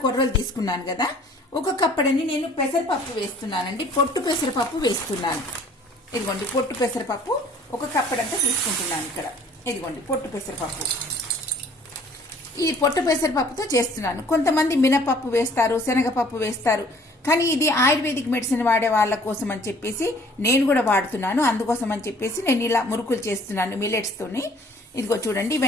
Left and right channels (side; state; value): both; normal; correlation 0.55